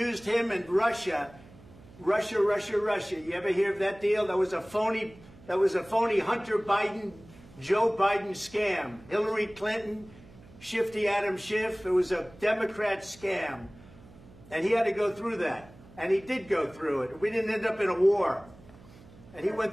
him and Russia. Russia. You ever hear of that deal? That was a phony Hunter Biden, Joe Biden scam. Hillary Clinton, Shifty Adam Schiff. It was a Democrat scam. And he had to go through that. And he did go through it. We didn't end up in a war. And he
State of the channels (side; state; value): right; noise; hum, 22 dB below the sound